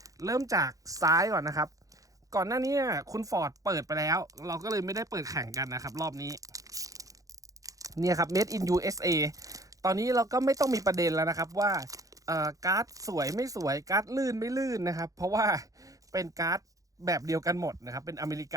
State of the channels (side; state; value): left; late; 0.17 ms